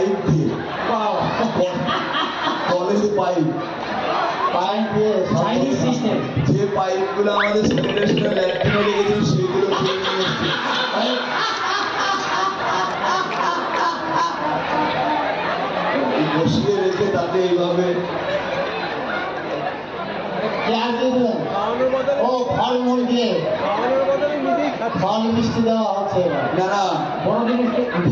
দিয়ে, কলের পাইপ দিয়ে চাইনিজ সিস্টেম। যে পাইপ গুলো আমাদের সেক্রেটারি ল্যাট্রিনে লেগেছিল সেগুলো খুলে নিয়ে এসছে। বসিয়ে রেখে তাকে এইভাবে ও ফলমূল দিয়ে ফল মিষ্টি দেওয়া হচ্ছে। না,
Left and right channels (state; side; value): identical; both; correlation 1.00